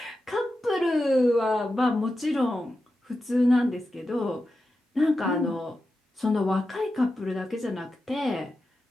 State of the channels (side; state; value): both; normal; correlation 0.91